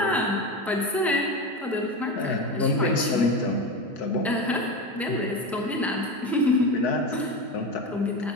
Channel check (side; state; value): both; normal; correlation 0.21